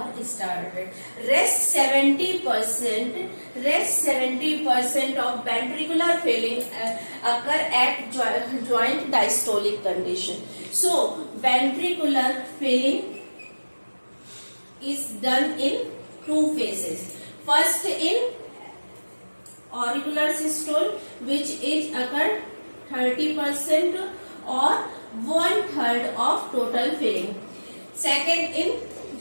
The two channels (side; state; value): both; inverted; correlation -1.00